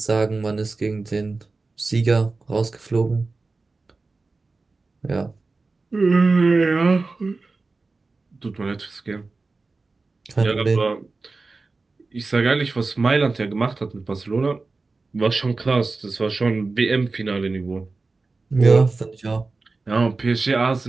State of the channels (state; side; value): quieter; left; 3.7 dB